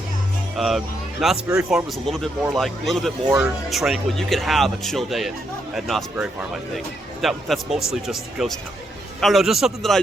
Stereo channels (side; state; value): both; normal; correlation 0.78